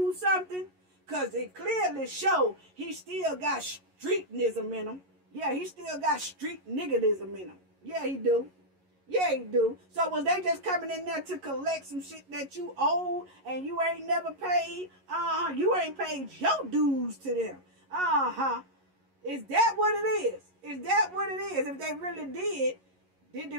something? Because it clearly show he still got streetnism in him. Yeah, he still got street niggerism in him. Yeah, he do. Yeah, he do. So was they just coming in there to collect some shit that you owe and you ain't never paid? You ain't paid your dues to them. Is that what it is? Is that what it is? If they really did they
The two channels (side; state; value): left; late; 11 ms